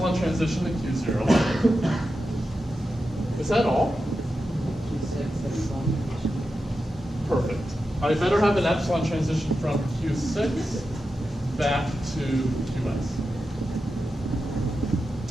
transition to Q0. Is that all? Perfect. I better have an epsilon transition from Q6 back to QS.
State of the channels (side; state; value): both; normal; correlation 0.90